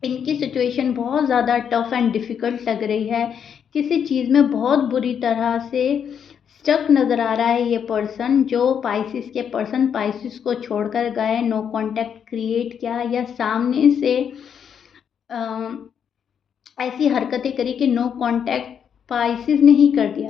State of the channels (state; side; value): quieter; right; 7.9 dB